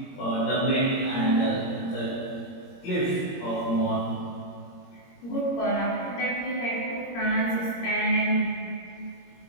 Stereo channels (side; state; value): right; late; 21 ms